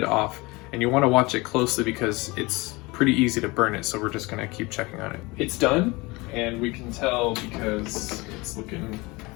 off. And you wanna watch it closely because it's pretty easy to burn it, so we're just gonna keep checking on it. It's done, and we can tell because it's looking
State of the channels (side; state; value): right; quieter; 23.8 dB